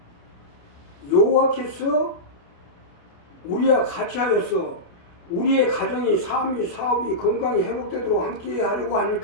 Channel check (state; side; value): late; right; 28 ms